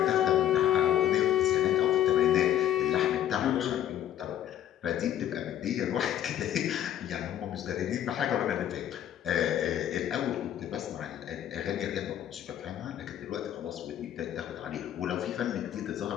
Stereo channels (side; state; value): right; quieter; 11.3 dB